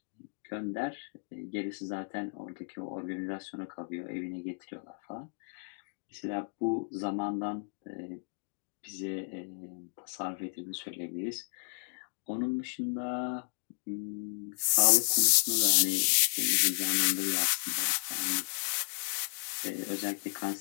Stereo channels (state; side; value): silent; right; digital silence